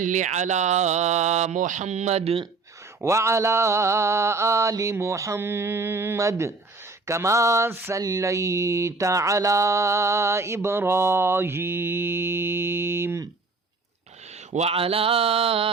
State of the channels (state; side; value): quieter; left; 3.8 dB